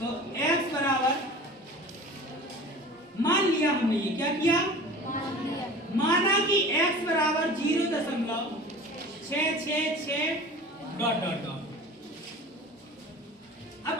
x बराबर मान लिया हमने ये क्या किया माना कि x बराबर 0.666 डॉट डॉट डॉट अब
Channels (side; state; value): both; normal; correlation 0.39